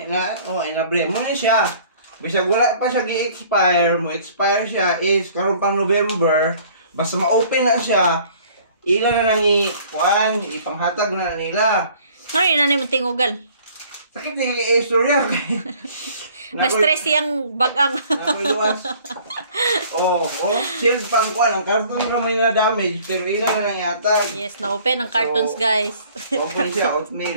Inabre mo na siya. Bisag wala pa siya gi-expire mo. Expire siya is karon pang November. Basta ma-open na siya, ila na nang ipanghatag na nila. Ano yun na naman tingugal? Sakit na yung istorya. Na-stress yung bagang. Nakuiluwas. Shield pang kuhan. Ang karton na may na-damage, pero ila na nang yatag. Yes, na-open ang cartons, guys. Open siya,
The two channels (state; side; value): inverted; both; correlation -0.54